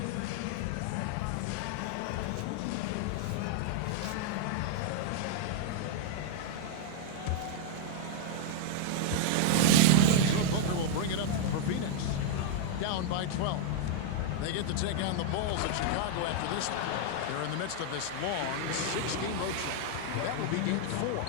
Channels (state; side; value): different; both; correlation -0.01